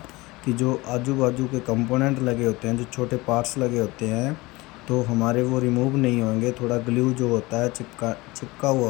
कि जो आजू बाजू के कंपोनेंट लगे होते हैं, जो छोटे पार्ट्स लगे होते हैं, तो हमारे वो रिमूव नहीं होंगे। थोड़ा ग्लू जो होता है चिपका हुआ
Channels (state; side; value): quieter; right; 21.9 dB